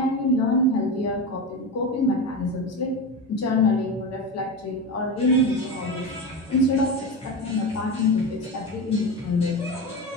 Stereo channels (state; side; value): normal; both; correlation 0.22